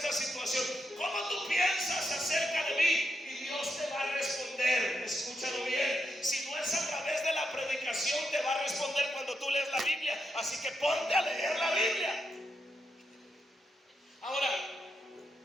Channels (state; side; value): normal; both; correlation 0.83